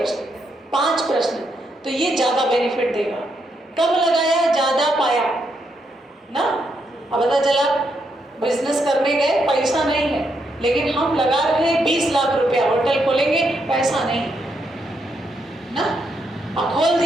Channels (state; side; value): normal; both; correlation 0.79